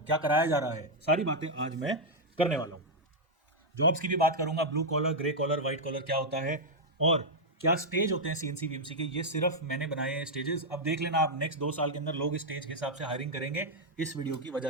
कराया जा रहा है, सारी बातें आज मैं करने वाला हूँ। जॉब्स की भी बात करूंगा, blue collar, grey collar, white collar क्या होता है और क्या स्टेज होते हैं सीएनसी वीएमसी के। ये सिर्फ मैंने बनाए हैं स्टेजेस। अब देख लेना आप नेक्स्ट 2 साल के अंदर लोग स्टेज के हिसाब से हायरिंग करेंगे। इस वीडियो की वजह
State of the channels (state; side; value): normal; both; correlation -0.03